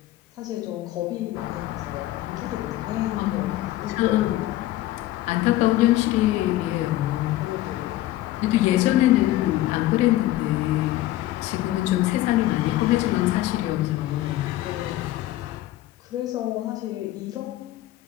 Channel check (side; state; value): right; quieter; 15.4 dB